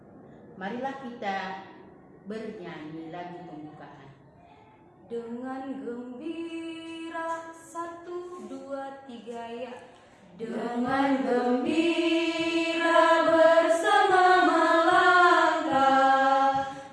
Marilah kita bernyanyi lagu pembukaan. Dengan gembira 1, 2, 3 ya. Dengan gembira bersama melangkah,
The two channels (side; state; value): both; identical; correlation 1.00